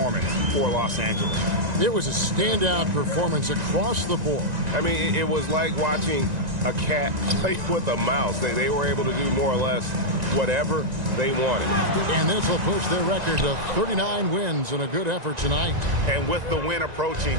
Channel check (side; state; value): left; late; 1.9 ms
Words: for Los Angeles. It was a standout performance across the board. I mean, it was like watching a cat play with a mouse. They were able to do more or less whatever they wanted. And this will push their record to 39 wins and a good effort tonight. And with the win